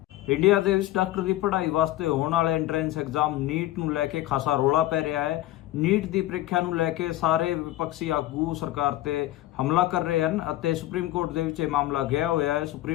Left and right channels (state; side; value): quieter; right; 15.7 dB